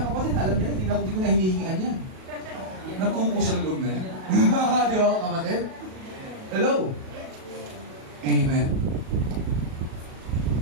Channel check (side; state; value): left; late; 37 ms